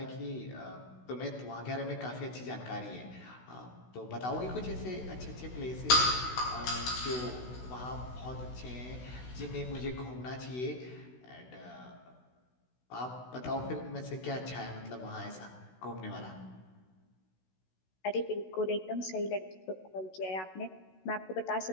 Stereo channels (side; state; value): right; late; 16 ms